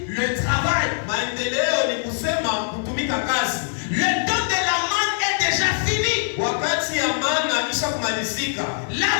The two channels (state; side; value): silent; right; 58 dB below the other